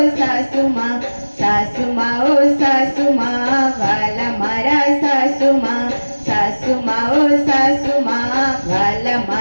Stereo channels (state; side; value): inverted; both; correlation -1.00